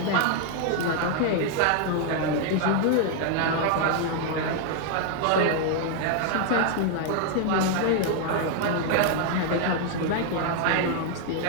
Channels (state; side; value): different; both; correlation 0.00